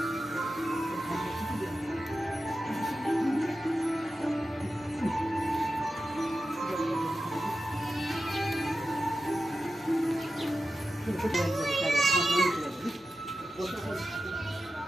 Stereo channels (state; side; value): normal; both; correlation 0.92